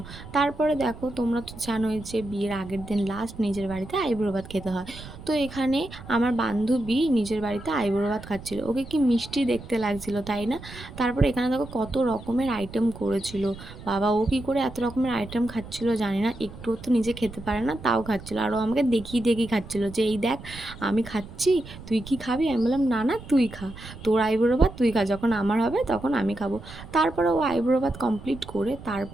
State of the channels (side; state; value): right; noise; rumble, 15 dB below the sound